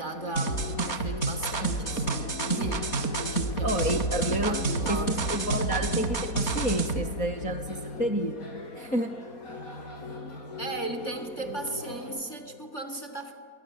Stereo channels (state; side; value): late; right; 4.2 ms